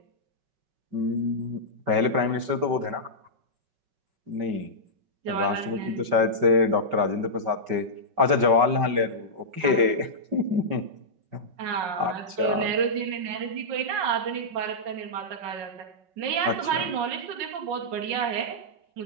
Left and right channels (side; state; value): left; late; 5.2 ms